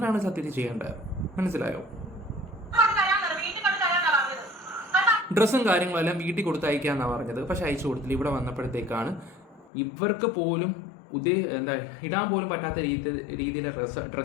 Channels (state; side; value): drops out; right; at 9.7 s